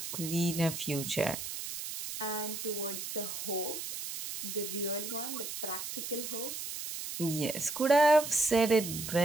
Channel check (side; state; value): right; noise; hiss, 7 dB below the sound